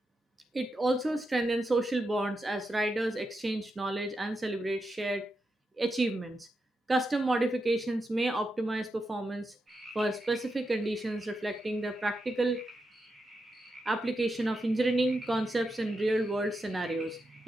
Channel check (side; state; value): both; normal; correlation 0.86